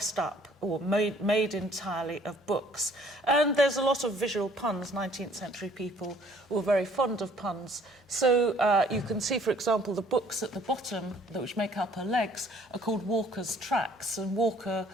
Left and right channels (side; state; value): both; normal; correlation 0.58